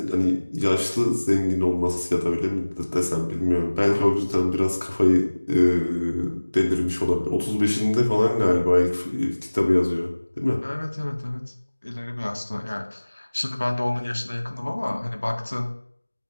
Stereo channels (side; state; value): both; inverted; correlation -1.00